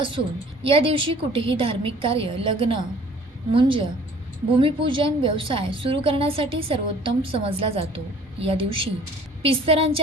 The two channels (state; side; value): normal; both; correlation 0.52